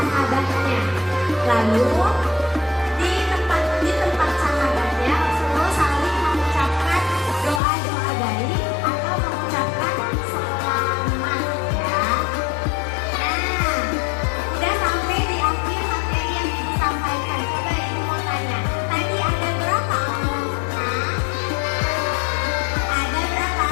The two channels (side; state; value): right; drops out; at 7.6 s